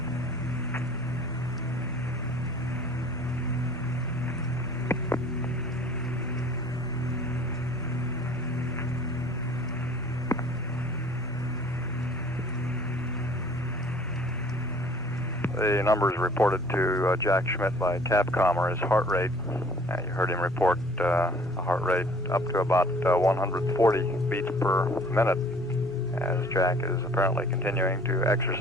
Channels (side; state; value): both; normal; correlation 0.52